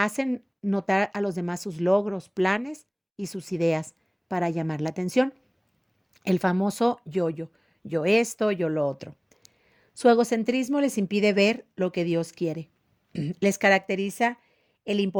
notar a los demás sus logros, planes y sus ideas para llamar la atención. El famoso yo-yo, yo esto, yo lo otro. Su egocentrismo les impide ver lo que Dios quiere. Les caracteriza el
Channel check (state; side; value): identical; both; correlation 1.00